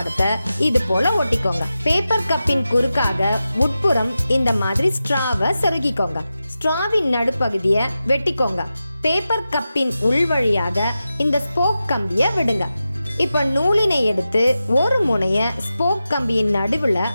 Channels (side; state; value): both; inverted; correlation -0.92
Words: இது போல ஒட்டிக்கோங்க. பேப்பர் கப்பின் குறுக்காக உட்புறம் இந்த மாதிரி ஸ்ட்ராவை செருகிக்கோங்க. ஸ்ட்ராவின் நடுப்பகுதியை வெட்டிக்கோங்க. பேப்பர் கப்பின் உள் வழியாக இந்த ஸ்போக் கம்பியை விடுங்க. இப்ப நூலினை எடுத்து ஒரு முனைய ஸ்போக் கம்பியின் நடுவுல